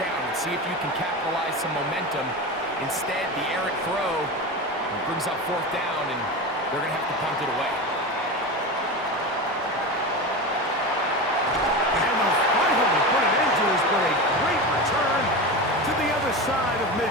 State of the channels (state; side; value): normal; both; correlation 0.24